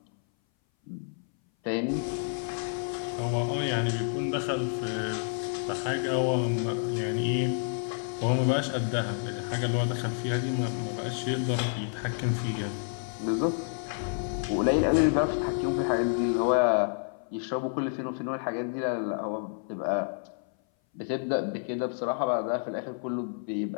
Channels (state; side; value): silent; right; 58 dB below the other